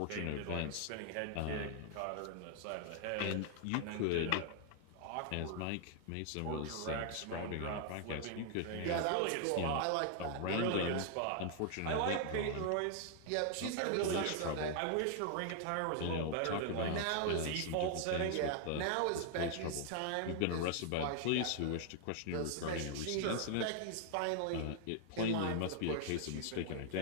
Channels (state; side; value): different; both; correlation 0.00